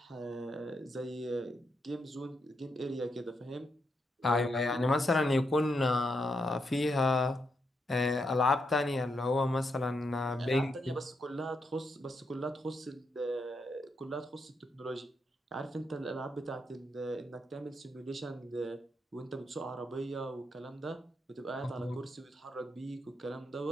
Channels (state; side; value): normal; both; correlation 0.81